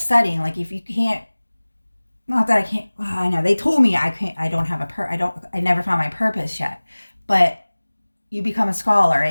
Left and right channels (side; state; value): both; inverted; correlation -1.00